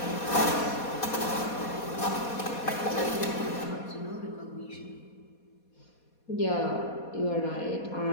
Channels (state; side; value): late; right; 4.2 ms